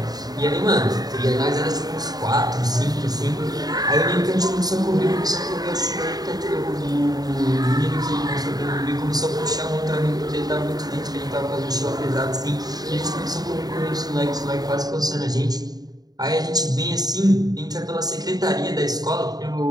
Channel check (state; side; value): late; left; 0.19 ms